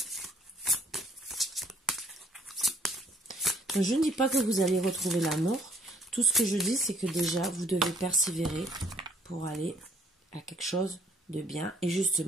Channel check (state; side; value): normal; both; correlation 0.62